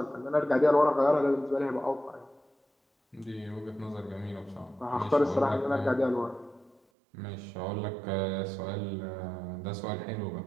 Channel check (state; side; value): drops out; left; at 6.8 s